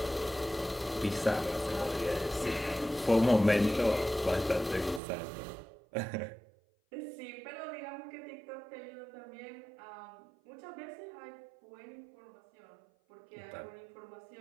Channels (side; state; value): left; drops out; at 5.0 s